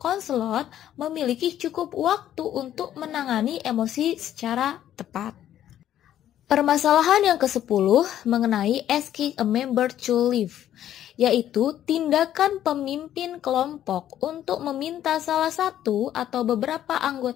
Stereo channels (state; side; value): quieter; right; 11.4 dB